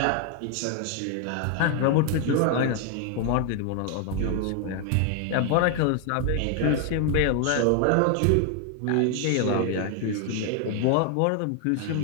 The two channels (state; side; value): different; both; correlation 0.00